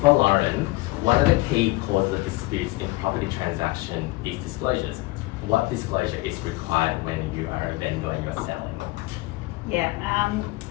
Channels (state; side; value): quieter; right; 21.3 dB